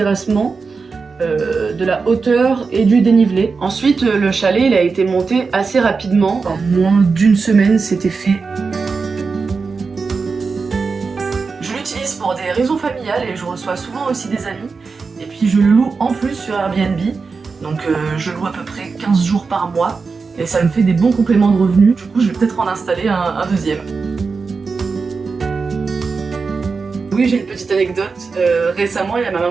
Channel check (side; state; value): left; quieter; 4.7 dB